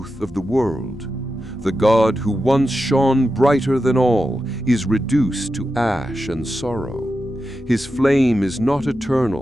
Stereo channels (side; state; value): both; normal; correlation 0.90